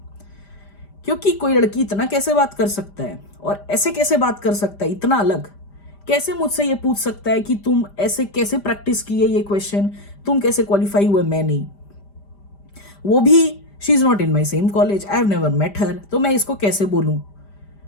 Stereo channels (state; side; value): late; right; 5.0 ms